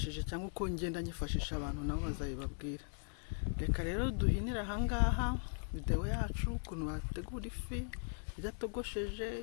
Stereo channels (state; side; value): silent; right; 52 dB below the other